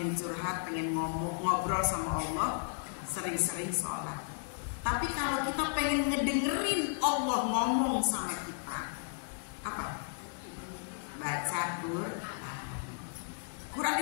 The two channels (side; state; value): right; silent; digital silence